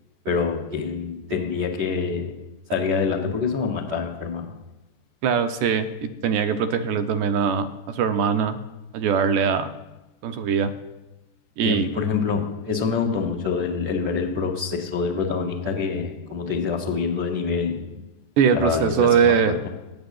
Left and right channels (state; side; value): late; left; 14 ms